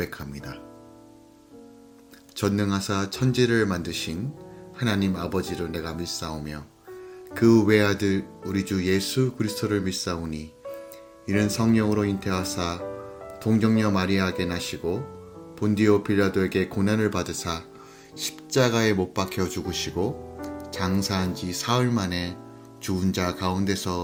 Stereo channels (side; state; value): both; identical; correlation 1.00